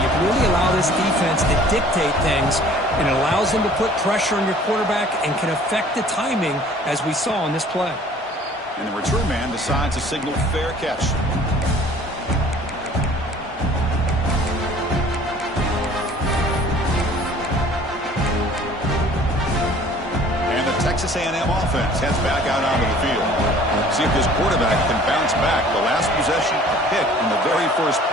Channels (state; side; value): normal; both; correlation 0.51